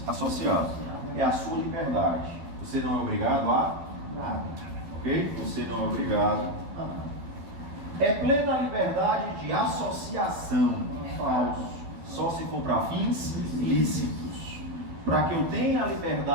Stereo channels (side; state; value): left; late; 12 ms